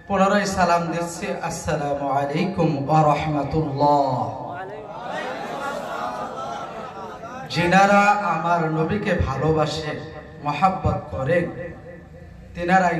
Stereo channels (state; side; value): identical; both; correlation 1.00